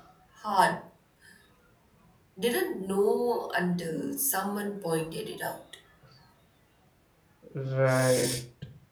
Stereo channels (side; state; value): both; identical; correlation 1.00